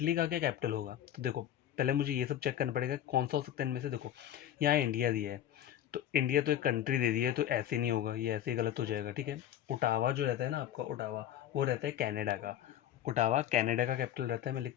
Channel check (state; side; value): quieter; right; 11.2 dB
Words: का क्या कैपिटल होगा? तो देखो पहले मुझे ये सब चेक करना पड़ेगा कौन सा हो सकता है इनमें से। देखो यहाँ इंडिया दिया है, तो इंडिया तो एक कंट्री दे दी है, तो ऐसे नहीं होगा, ये ऐसे ही गलत हो जाएगा। ठीक है, ओटावा जो रहता है ना आपका, ओटावा वो रहता है कनाडा का। ओटावा कनाडा का कैपिटल रहता है। मैं